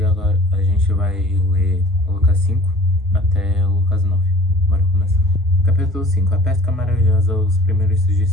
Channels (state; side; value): normal; both; correlation 0.48